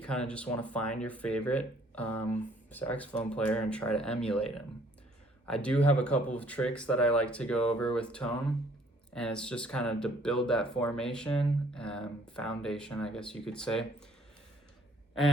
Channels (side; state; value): both; normal; correlation 0.61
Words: kind of just want to find your favorite saxophone player and try to emulate him. I do have a couple of tricks that I like to go over with tone, and it's just kind of to build that formation and foundation, I guess you could say,